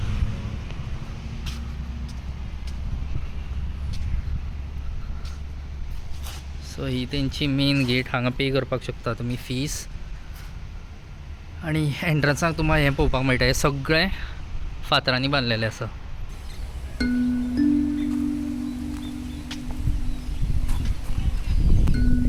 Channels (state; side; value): identical; both; correlation 1.00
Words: So ही तेंची मेन गेट. हांगा पे करपाक शकता तुमी फीस आणि एंट्रन्साक तुमकां हें पळोवपाक मेळटा. हें सगळें फातरांनी बांदलेलें आसा.